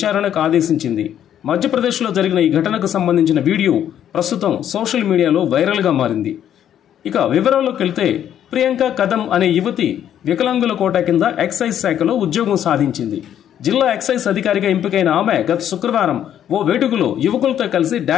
ఆదేశించింది. మధ్యప్రదేశ్లో జరిగిన ఈ ఘటనకు సంబంధించిన వీడియో ప్రస్తుతం సోషల్ మీడియాలో వైరల్గా మారింది. ఇక వివరాల్లోకి వెళ్తే, ప్రియాంక కదం అనే యువతి వికలాంగుల కోటా కింద ఎక్సైజ్ శాఖలో ఉద్యోగం సాధించింది. జిల్లా ఎక్సైజ్ అధికారిగా ఎంపికైన ఆమె గత శుక్రవారం ఓ వేడుకలో యువకులతో కలిసి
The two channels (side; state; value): right; quieter; 10.2 dB